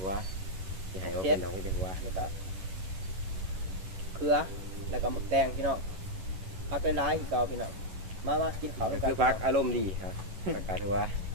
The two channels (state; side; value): late; left; 11 ms